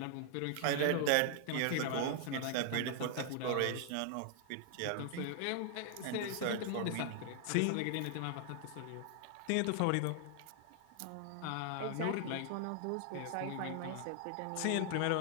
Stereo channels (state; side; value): different; both; correlation 0.00